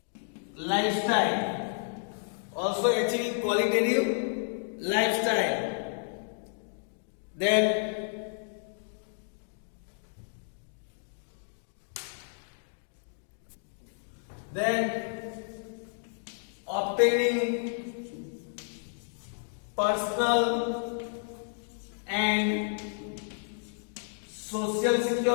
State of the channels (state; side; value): silent; right; digital silence